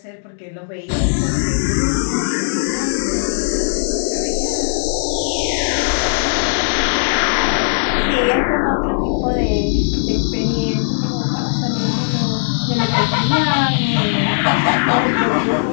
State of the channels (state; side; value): silent; right; digital silence